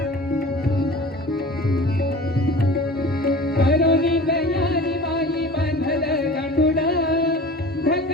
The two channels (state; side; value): normal; both; correlation 0.39